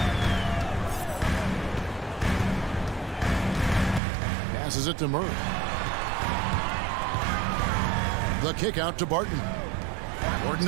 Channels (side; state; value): left; drops out; at 4.0 s